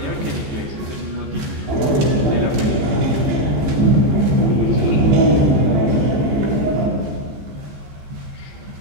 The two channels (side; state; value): left; late; 14 ms